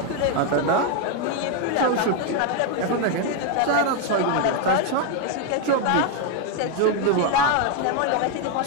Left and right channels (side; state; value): both; different; correlation 0.01